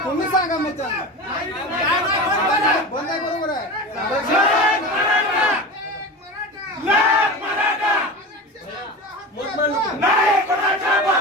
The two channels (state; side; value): normal; both; correlation 0.29